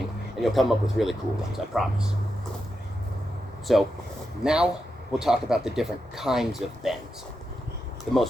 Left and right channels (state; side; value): normal; both; correlation 0.87